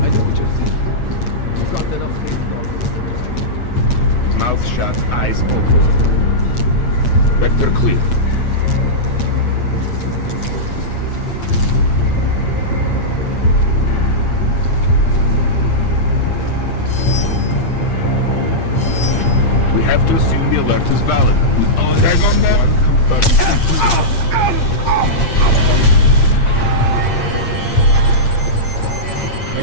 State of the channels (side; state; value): right; late; 8.6 ms